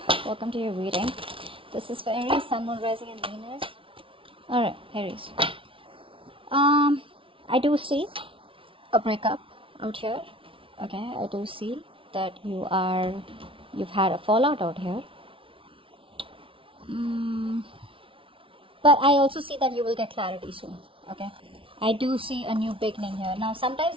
Welcome to your reading. This is for Aries, Sun, Moon, Rising, and Venus. Alright, Aries. I do see a breakup out here. Okay, I do see that you've had a fallout out here. But I also see that you will get clarity soon. Okay, I do see a new beginning here. Now,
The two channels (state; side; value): late; left; 0.25 ms